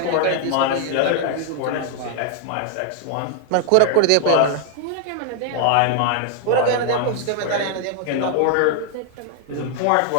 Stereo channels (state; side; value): different; both; correlation 0.00